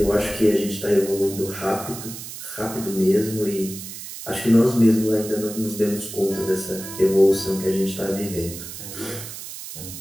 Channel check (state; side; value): noise; right; hiss, 11 dB below the sound